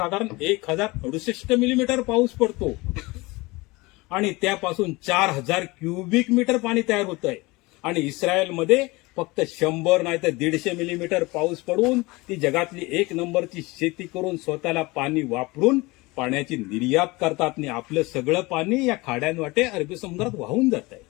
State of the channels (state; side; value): quieter; right; 23.1 dB